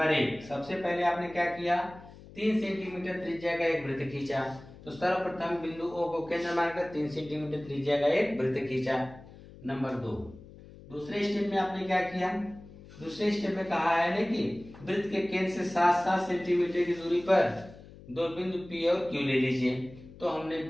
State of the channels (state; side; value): noise; left; hum, 19 dB below the sound